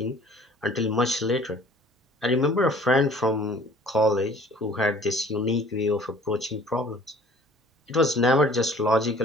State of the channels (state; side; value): normal; both; correlation 0.52